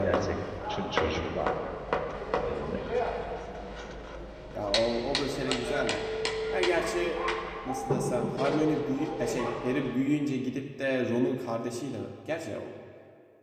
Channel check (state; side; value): identical; both; correlation 1.00